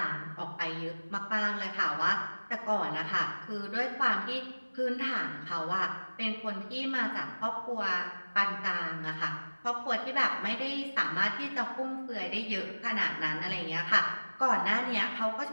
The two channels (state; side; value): inverted; both; correlation -1.00